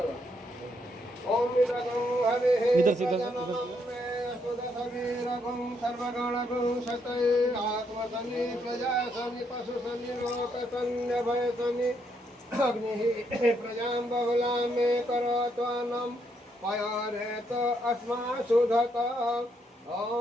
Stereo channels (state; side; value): normal; both; correlation 0.75